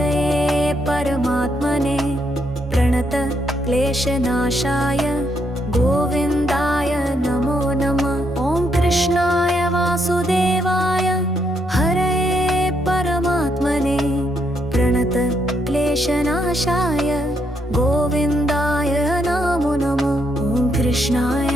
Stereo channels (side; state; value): both; normal; correlation 0.76